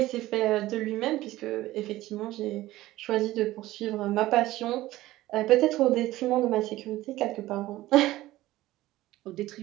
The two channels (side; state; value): left; quieter; 16.5 dB